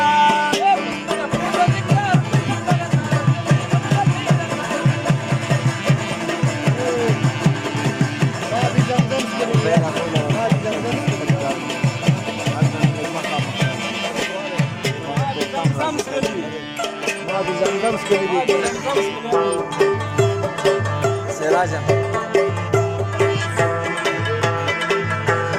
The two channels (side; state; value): both; identical; correlation 1.00